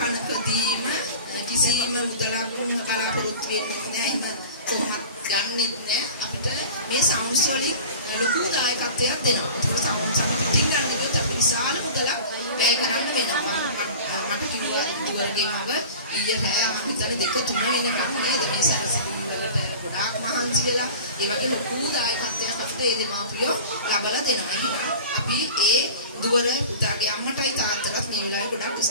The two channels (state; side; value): inverted; both; correlation -0.38